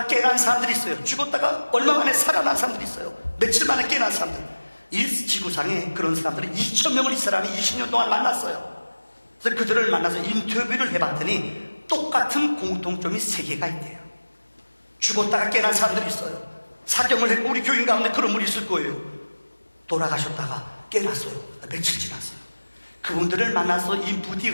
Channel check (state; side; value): inverted; both; correlation -1.00